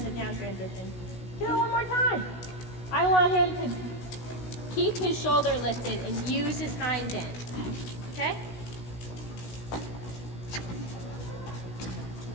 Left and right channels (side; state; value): right; late; 16 ms